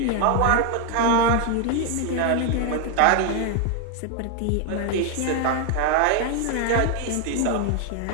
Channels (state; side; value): different; both; correlation 0.00